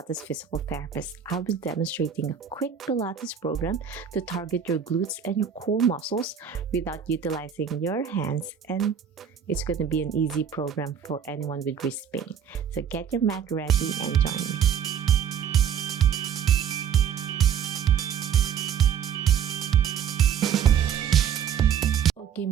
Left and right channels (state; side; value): quieter; left; 8.0 dB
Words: Physical Therapist. I'll be demonstrating a quick Pilates program to target your glutes and your core muscles without utilizing your hands, and it's going to be an easy program for anyone with wrist pain. So get your mat ready and join me. Okay,